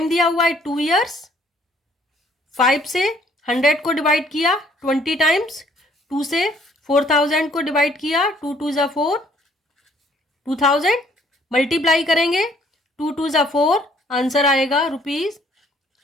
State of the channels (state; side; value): normal; both; correlation 0.62